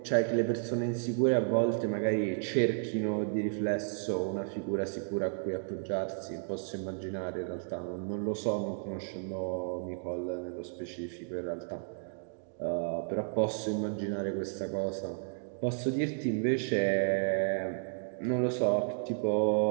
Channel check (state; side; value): silent; left; digital silence